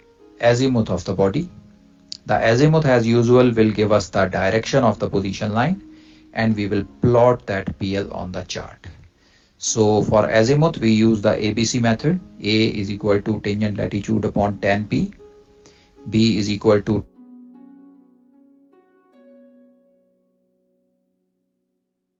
azimuth of the body. The azimuth, as usual, will give us the direction of the position line, and we will plot that PL on the chart. So for azimuth, we use the ABC method. A is equal to tangent latitude upon tan P. B is equal to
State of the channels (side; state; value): both; identical; correlation 1.00